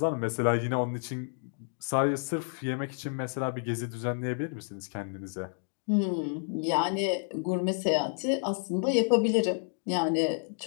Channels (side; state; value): right; silent; 58 dB below the other